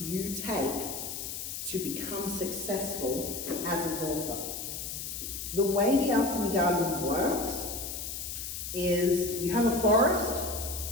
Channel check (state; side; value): noise; left; hiss, 6 dB below the sound